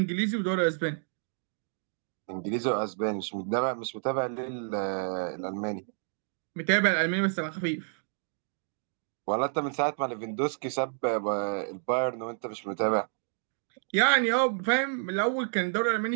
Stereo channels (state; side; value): silent; left; digital silence